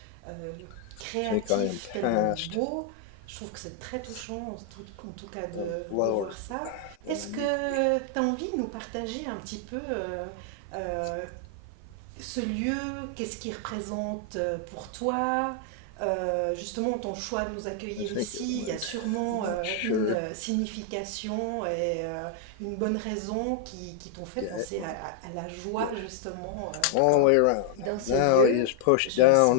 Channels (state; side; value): different; both; correlation 0.00